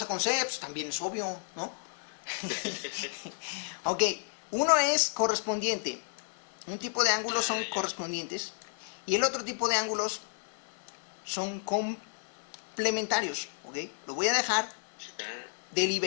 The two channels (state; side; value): silent; right; digital silence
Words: con C, pues también es obvio, ¿no? Ok, uno es correspondiente. Un tipo de ángulos son correspondientes y el otro tipo de ángulos son complementarios, ¿ok? Lo voy a dejar,